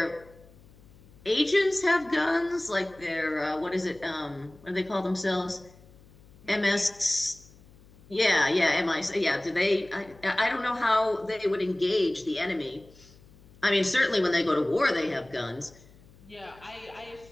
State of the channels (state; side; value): noise; left; hum, 25 dB below the sound